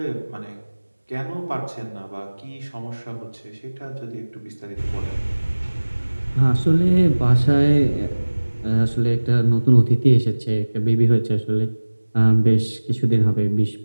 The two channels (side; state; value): both; inverted; correlation -1.00